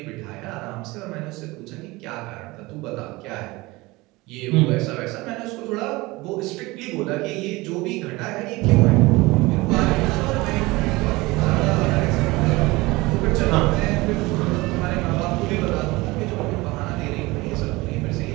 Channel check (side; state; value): left; quieter; 21.9 dB